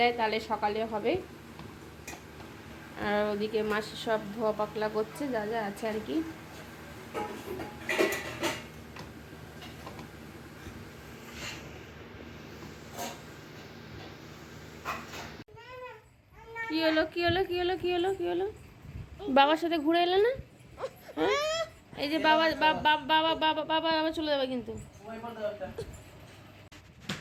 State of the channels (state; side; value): identical; both; correlation 1.00